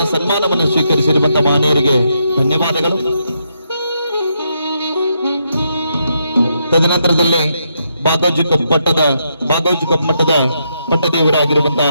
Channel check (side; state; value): both; inverted; correlation -0.79